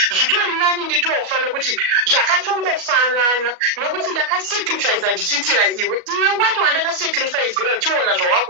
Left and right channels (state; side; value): late; left; 37 ms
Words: zvitori nani nditofa nekuti zvakatongofanana nokuti ndakasacrifica ndichiitira iwe wacho wandakasacrificira uchiona